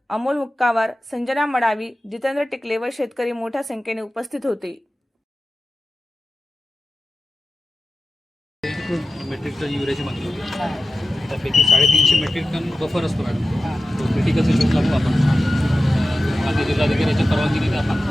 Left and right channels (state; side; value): normal; both; correlation 0.94